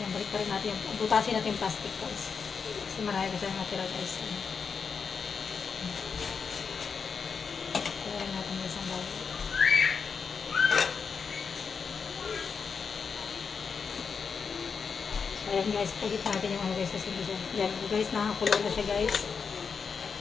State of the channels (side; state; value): right; quieter; 5.8 dB